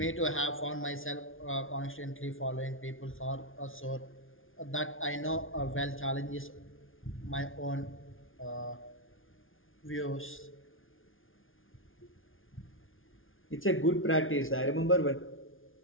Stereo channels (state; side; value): late; right; 0.58 ms